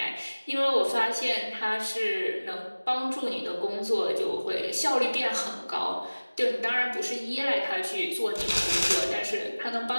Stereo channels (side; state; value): both; inverted; correlation -1.00